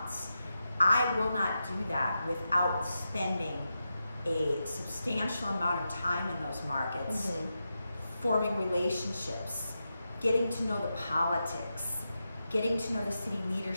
I will not do that without spending a substantial amount of time in those markets, forming relationships, getting to know the politics, getting to know the city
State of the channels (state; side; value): inverted; both; correlation -0.89